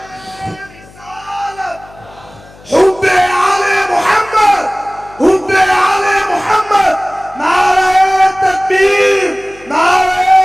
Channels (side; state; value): left; noise; hum, 24 dB below the sound